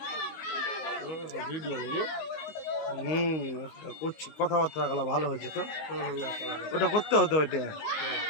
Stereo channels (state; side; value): late; right; 19 ms